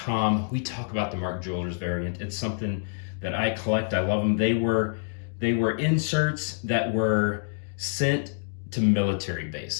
we talk about the Mark Jewelers variant. It's something that I collect. I love them. They were inserts that were sent to military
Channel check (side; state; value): right; silent; digital silence